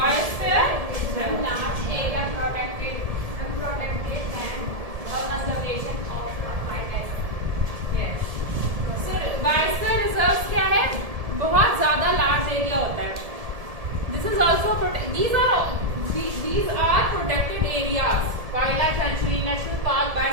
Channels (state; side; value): late; left; 1.7 ms